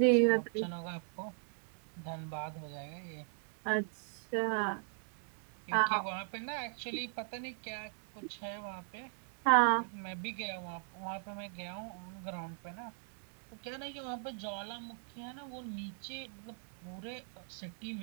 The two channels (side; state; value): left; silent; 52 dB below the other